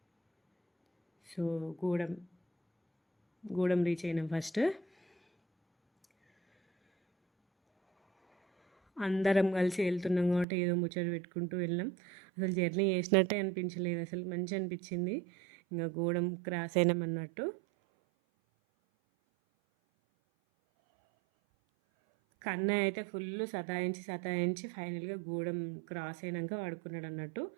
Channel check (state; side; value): drops out; left; at 10.5 s